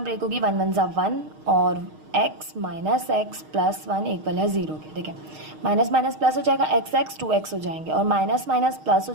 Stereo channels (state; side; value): late; left; 6.5 ms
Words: ब्रेक होगी 1 1 = 1 और x minus X plus 1 equal है 0 के। देखें, माइनस माइनस प्लस हो जाएगा, एक्स एक्स 2x हो जाएंगे और माइनस माइनस प्लस हो